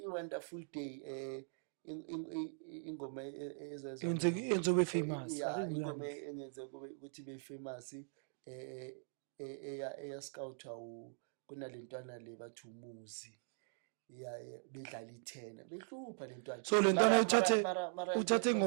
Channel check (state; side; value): silent; left; digital silence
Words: i wonderful day ingoma enzobe famous ingoma engenze ukuthi be famous eya scout kunalentwana le bathi umuzi yeah bedlala i10 behlupha lentwana so lentwana uthathe